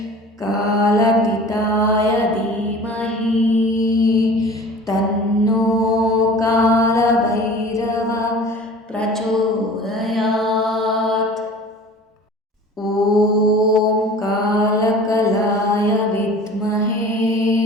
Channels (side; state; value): both; normal; correlation 0.43